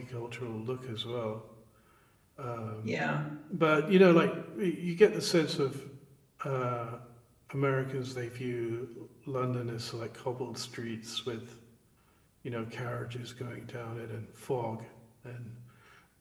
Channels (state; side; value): identical; both; correlation 1.00